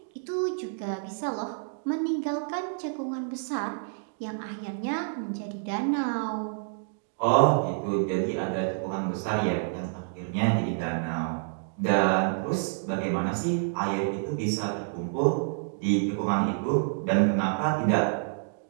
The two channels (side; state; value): left; silent; digital silence